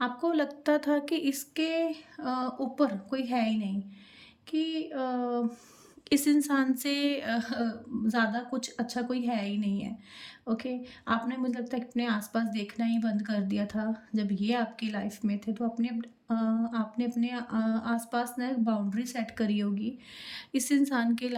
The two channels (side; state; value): both; identical; correlation 1.00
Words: आपको लगता था कि इसके ऊपर कोई है ही नहीं, कि इस इंसान से ज़्यादा कुछ अच्छा कोई है ही नहीं है। ओके, आपने मुझे लगता है कि अपने आस-पास देखना ही बंद कर दिया था, जब ये आपकी लाइफ़ में थे, तो आपने अपने आस-पास ना एक बाउंड्री सेट करी होगी। इस इंसान के